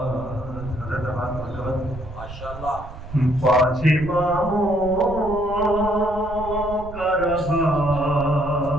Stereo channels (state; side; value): noise; right; rumble, 12 dB below the sound